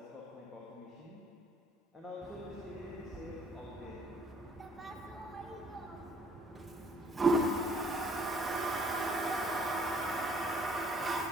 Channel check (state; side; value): normal; both; correlation 0.61